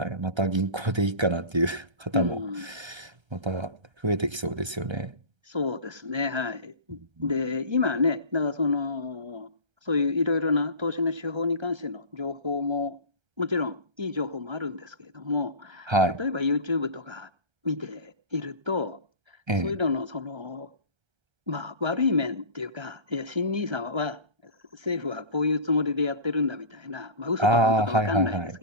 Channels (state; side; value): late; left; 1.3 ms